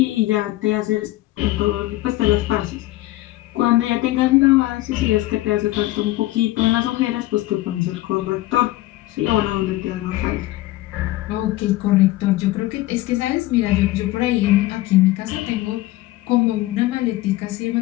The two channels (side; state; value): right; quieter; 17.3 dB